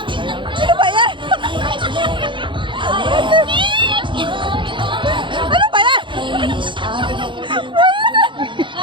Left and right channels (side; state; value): left; late; 0.23 ms